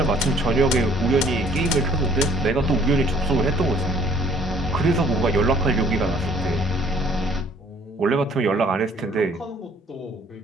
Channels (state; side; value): normal; both; correlation 0.58